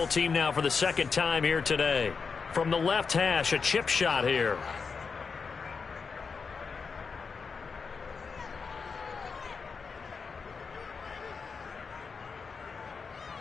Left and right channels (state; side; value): quieter; right; 5.3 dB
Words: team now for the second time here today. From the left hash, a chip shot here.